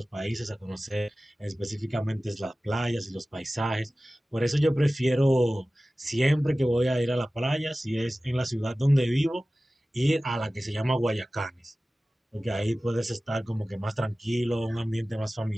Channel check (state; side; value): normal; both; correlation 0.97